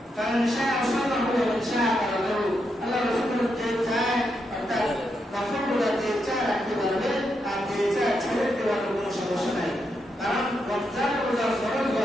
কারণ শাহ সাল্লাল্লাহু আলাইহি ওয়াসাল্লাম আল্লাহ রাসূল যে চায় অর্থাৎ নফল রোজা যে চায় রাখতে পারবে আর যে চায় ছেড়ে দেওয়ার কোনো সমস্যা নাই কারণ রমজানের রোজা ফরজ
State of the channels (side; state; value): both; normal; correlation 0.82